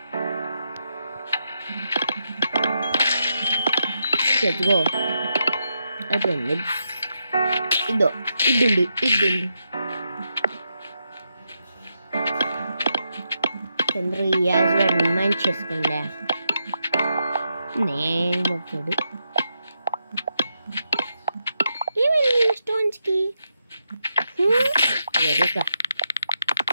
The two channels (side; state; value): both; inverted; correlation -0.83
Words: చెట్టుకో అయిపోయింది. ఇద్దండి చంద్ర యాజ్ మైండ్ చేసుకోండి. నేను వచ్చాడు ఏమైంది స్టోన్స్ కి.